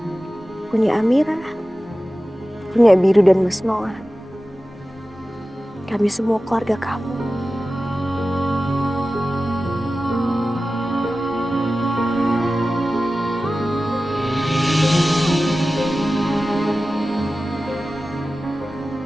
punya Amira, punya Biru dan Mas Noah. Kami semua keluarga kamu.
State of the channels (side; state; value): both; normal; correlation 0.95